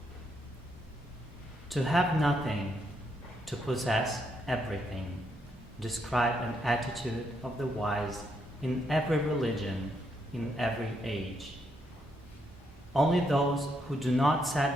To have nothing, to possess everything, describe an attitude of the wise in every religion, in every age. Only those who do not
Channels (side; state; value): both; normal; correlation 0.77